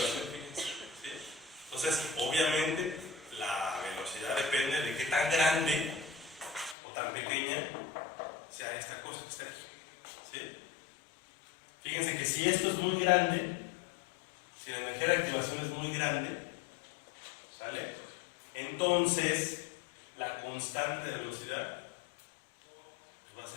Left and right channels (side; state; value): right; drops out; at 6.8 s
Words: fíjense, ¿sí? Entonces, obviamente la velocidad depende de qué tan grande o tan pequeño que está aquí. ¿Sí? Fíjense que si esto es muy grande, si la energía de activación es muy grande, ¿sale? Entonces la constante de velocidad va a